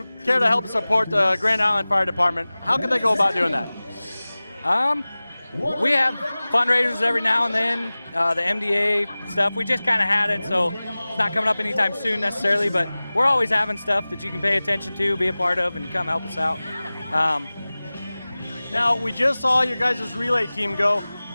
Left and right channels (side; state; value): both; inverted; correlation -0.98